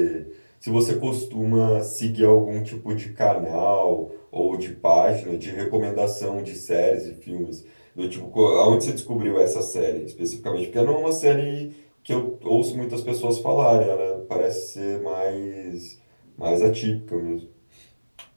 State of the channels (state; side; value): inverted; both; correlation -1.00